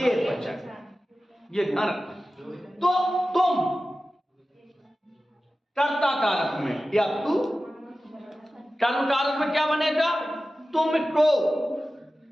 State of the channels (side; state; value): both; normal; correlation 0.95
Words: वचन है। ये ध्यान रखना। तो तुम कर्ता कारक में या तू कर्म कारक में क्या बनेगा? तुमको,